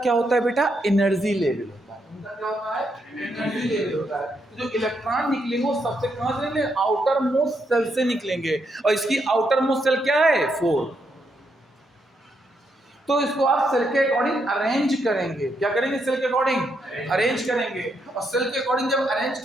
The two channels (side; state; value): both; normal; correlation 0.78